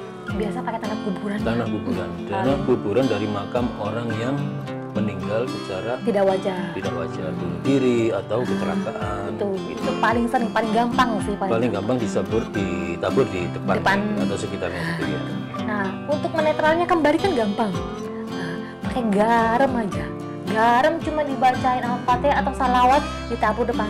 Biasa pakai tanah kuburan. Tanah kuburan. Tanah kuburan dari makam orang yang meninggal secara Tidak wajar. tidak wajar, bunuh diri atau kecelakaan. Itu paling sering, paling gampang sih. Paling gampang ditabur di depan atau sekitarnya situ ya. Nah, untuk menetralnya kembali kan gampang. Nah, pakai garam aja. Garam cuma dibacain Al-Fatihah atau salawat, ditabur depan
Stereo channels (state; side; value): identical; both; correlation 1.00